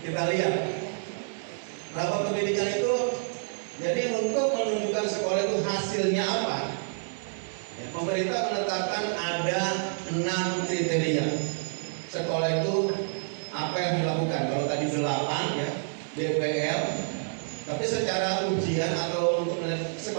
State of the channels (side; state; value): left; silent; 59 dB below the other